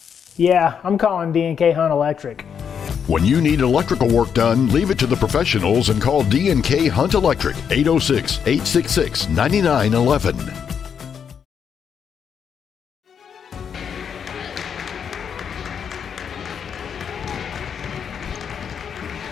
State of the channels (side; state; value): right; quieter; 7.4 dB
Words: Yeah, I'm calling D&K Hunt Electric. When you need electrical work done, leave it to the professionals and call D&K Hunt Electric, 806-866-9911.